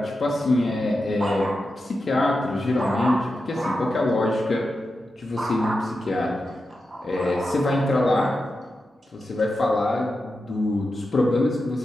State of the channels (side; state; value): both; normal; correlation 0.90